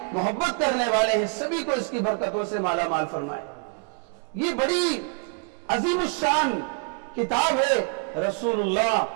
محبت کرنے والے ہیں، سبھی کو اس کی برکتوں سے مالا مال فرمائے۔ یہ بڑی عظیم الشان کتاب ہے۔ رسول اللہ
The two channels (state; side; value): quieter; left; 36.1 dB